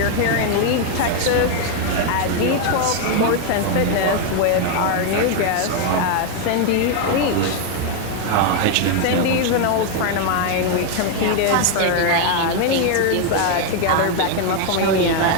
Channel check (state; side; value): different; both; correlation 0.01